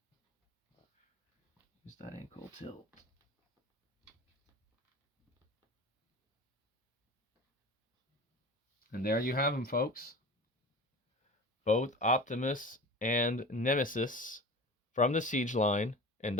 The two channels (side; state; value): both; normal; correlation 0.34